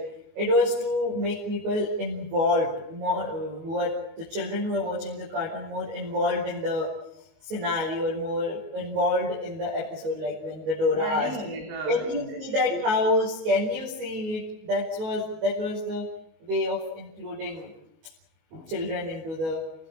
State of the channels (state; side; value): late; left; 19 ms